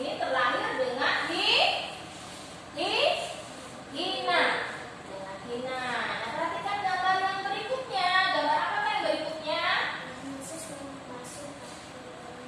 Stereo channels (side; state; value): both; identical; correlation 1.00